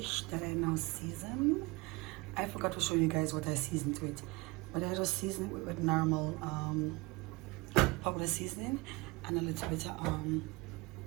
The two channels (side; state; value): left; quieter; 24.5 dB